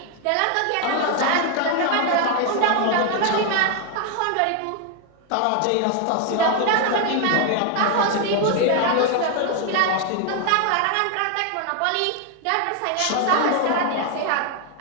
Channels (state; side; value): different; both; correlation 0.00